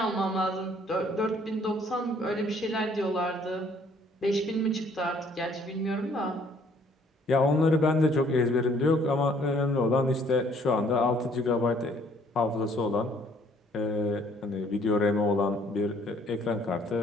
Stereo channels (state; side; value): normal; both; correlation 0.61